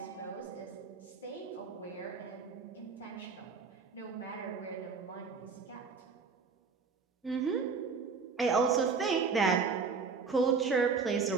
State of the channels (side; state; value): left; quieter; 5.2 dB